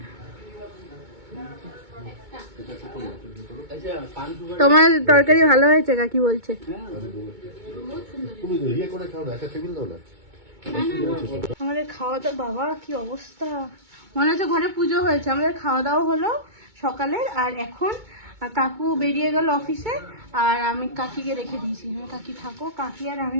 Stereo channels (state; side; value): late; left; 2.2 ms